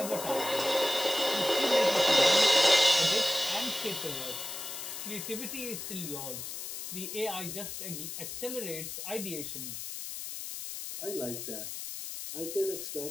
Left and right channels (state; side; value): noise; left; hiss, 7 dB below the sound